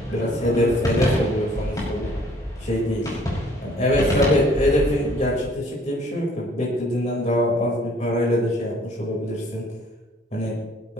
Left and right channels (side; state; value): both; normal; correlation 0.58